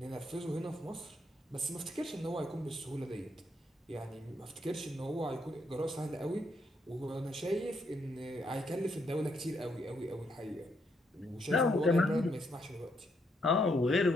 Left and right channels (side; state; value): both; normal; correlation 0.76